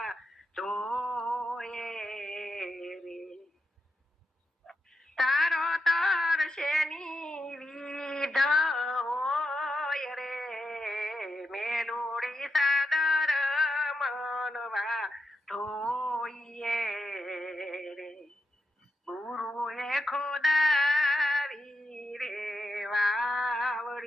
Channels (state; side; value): normal; both; correlation 0.85